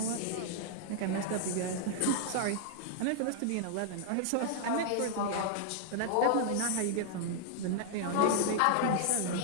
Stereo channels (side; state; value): both; different; correlation -0.01